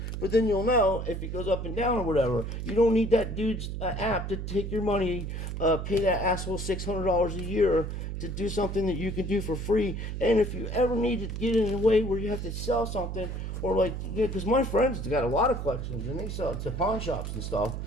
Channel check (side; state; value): right; noise; hum, 5 dB below the sound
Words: But then you'll know if it goes up and down or whatever. You don't need that dude's app to take your money, pay that asshole $600 a year to do something that you can do for free. And if you ever need to get in a way where you have to sell something, or because my friends got a lot of collections and they sell it to pawn shops and stuff,